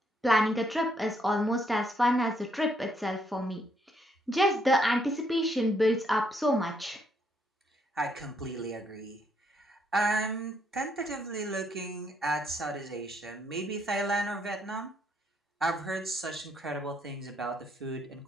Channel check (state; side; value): normal; both; correlation 0.72